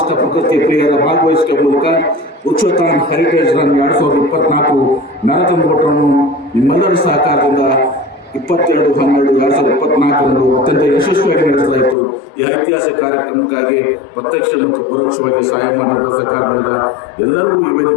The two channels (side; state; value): right; drops out; at 12.0 s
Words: ಪ್ರಕೃತಿ ಪ್ರಿಯರ ಭಾಗವಹಿಸುವ ಮೂಲಕ ಉಚ್ಚತಾನ್ ಹೆರಿಟೇಜ್ ರನ್ 2024 ಮ್ಯಾರಥಾನ್ ಓಟವನ್ನು ನಿಮ್ಮೆಲ್ಲರ ಸಹಕಾರದಿಂದ 22/12/2024 ಅತ್ಯಂತ ಯಶಸ್ವಿಯಾಗಿ ನಡೆಸಲಾಯಿತು. ಈ ಐತಿಹಾಸಿಕ ಕಾರ್ಯಕ್ರಮಕ್ಕಾಗಿ ಪ್ರತ್ಯಕ್ಷ ಮತ್ತು ಪರೋಕ್ಷವಾಗಿ ಸಹಾಯ ಮಾಡಿದ ಸರ್ಕಾರದಿಂದ ಎಲ್ಲರಿಗೂ ಈ